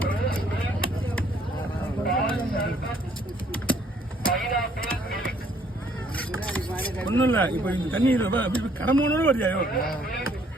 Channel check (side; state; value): both; normal; correlation 0.64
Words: ஒன்றும் இல்லை, இப்போ இந்த தண்ணி அப்படி கடமோனோட வருதியாயோ